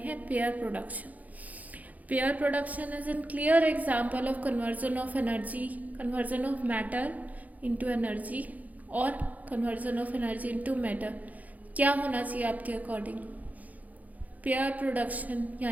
हैं pair production. Pair production is an clear example of conversion of energy, conversion of matter into energy और conversion of energy into matter. क्या होना चाहिए आपके अकॉर्डिंग? पेयर प्रोडक्शन,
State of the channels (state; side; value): late; left; 0.077 ms